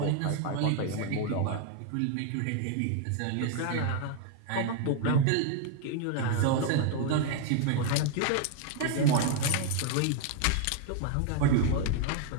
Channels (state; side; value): different; both; correlation 0.00